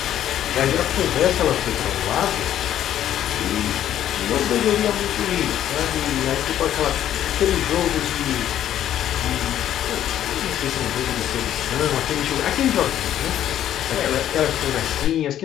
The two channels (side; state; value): right; quieter; 11.3 dB